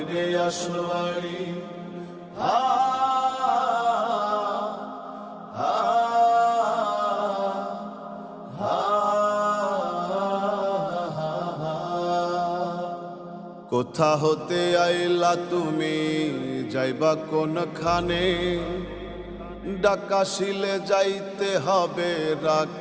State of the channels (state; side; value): identical; both; correlation 1.00